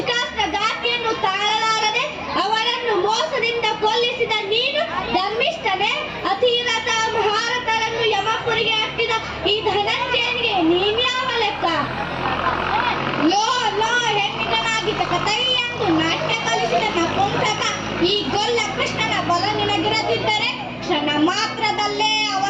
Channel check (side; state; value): both; identical; correlation 1.00